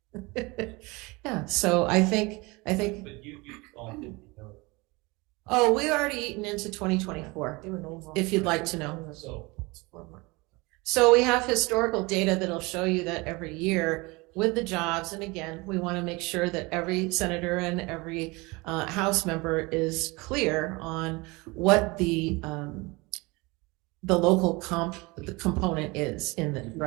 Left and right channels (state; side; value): quieter; left; 24.9 dB